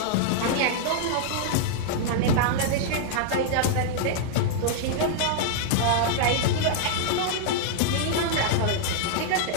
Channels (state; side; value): different; both; correlation -0.01